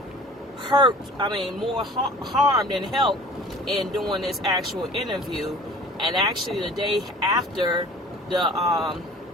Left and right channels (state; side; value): normal; both; correlation 0.45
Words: harm than help in doing this actual interview. And actually the day after